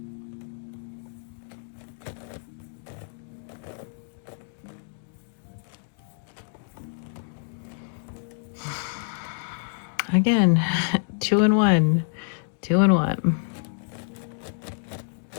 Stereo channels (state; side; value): silent; right; digital silence